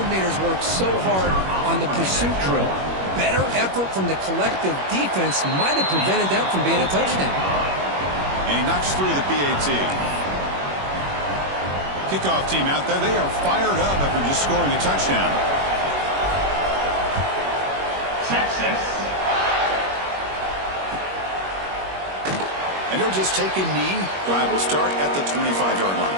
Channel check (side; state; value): left; late; 21 ms